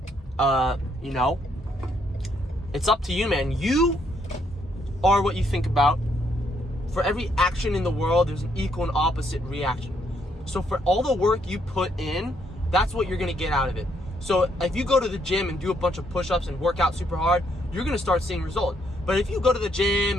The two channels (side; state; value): both; normal; correlation 0.72